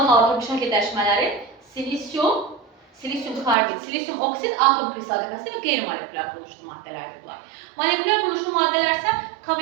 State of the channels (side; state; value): left; drops out; at 3.6 s